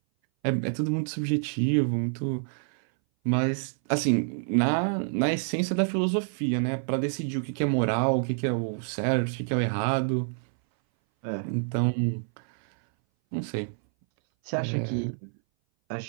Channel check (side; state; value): left; silent; 59 dB below the other